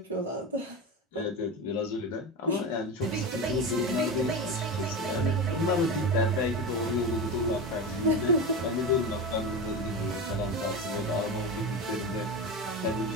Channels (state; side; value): normal; both; correlation 0.22